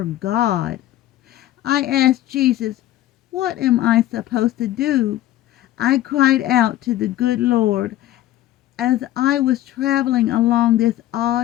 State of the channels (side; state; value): right; quieter; 14.1 dB